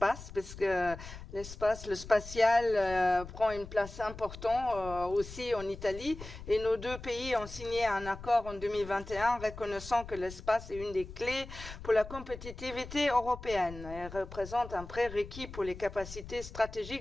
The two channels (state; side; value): noise; left; rumble, 13 dB below the sound